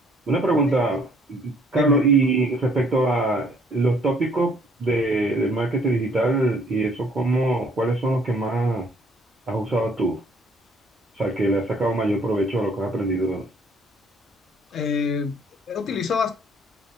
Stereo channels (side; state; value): both; normal; correlation 0.61